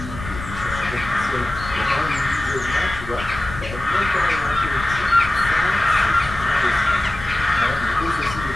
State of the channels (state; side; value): noise; left; rumble, 11 dB below the sound